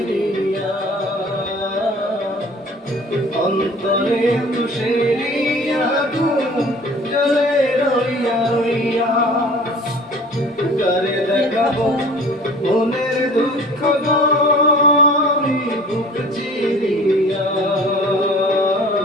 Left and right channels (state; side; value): normal; both; correlation 0.46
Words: অন্তরে তুষেরিয়া জলে রইয়া রইয়া করে দেখাবো মনের দুঃখ গরি বুক চিরিয়া